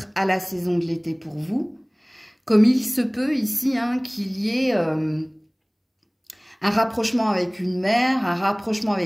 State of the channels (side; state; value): both; identical; correlation 1.00